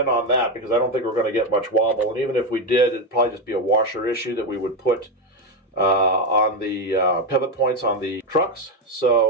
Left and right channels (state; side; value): normal; both; correlation 0.08